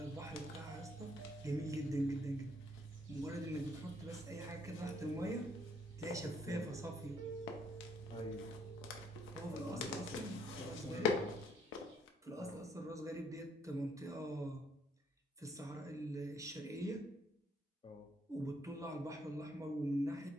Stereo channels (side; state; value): both; normal; correlation 0.68